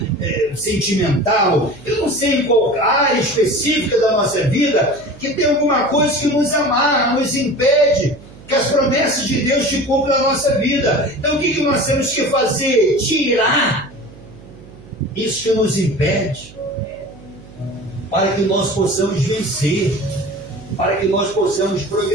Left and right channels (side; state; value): right; noise; hum, 20 dB below the sound